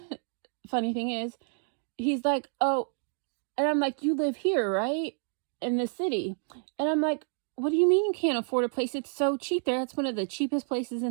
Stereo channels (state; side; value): silent; left; 55 dB below the other